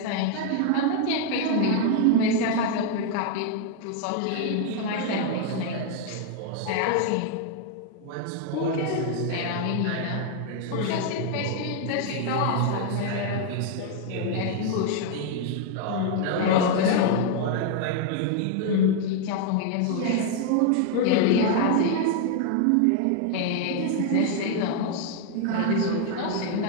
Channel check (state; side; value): different; both; correlation 0.00